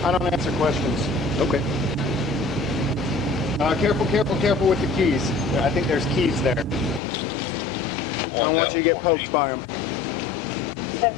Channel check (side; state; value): right; drops out; at 7.0 s